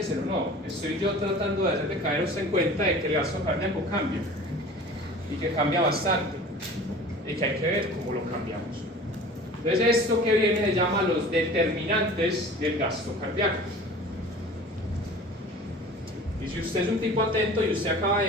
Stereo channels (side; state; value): both; normal; correlation 0.42